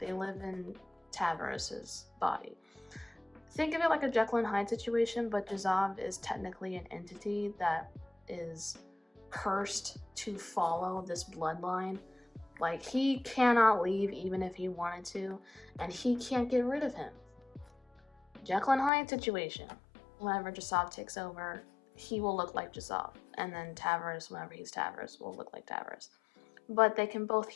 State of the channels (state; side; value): drops out; right; at 18.9 s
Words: live in Tavros's body. Think of it like a Jekyll and Hyde situation, but Jasov is technically an entity that is cursed to follow this bloodline. Like, he cannot leave even if he wanted to, and he can't get rid of him. Jekyll and Hyde situation. Whenever Jasov takes over, he will look like Jasov, and then Tavros, whenever he's Tavros, will look like Tavros. But they can both